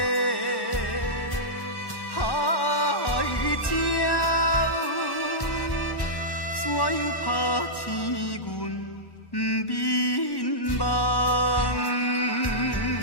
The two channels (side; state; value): right; late; 1.1 ms